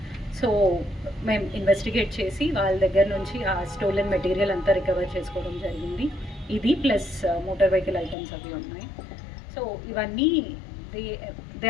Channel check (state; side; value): drops out; right; at 8.2 s